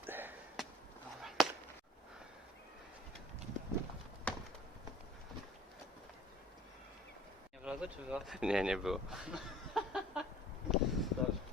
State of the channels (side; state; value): both; normal; correlation 0.50